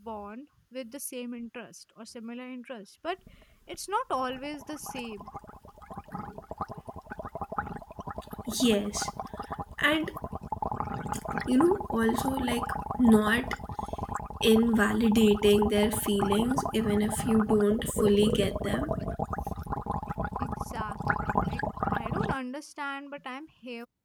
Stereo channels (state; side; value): identical; both; correlation 1.00